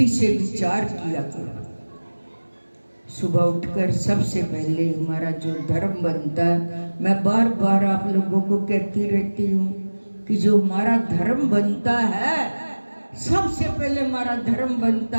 से विचार किया करो, सुबह उठकर सबसे पहले हमारा जो धर्म बनता है, मैं बार बार आप लोगों को कहती रहती हूँ कि जो हमारा धर्म बनता है, सबसे पहले हमारा धर्म बनता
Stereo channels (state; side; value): inverted; both; correlation -1.00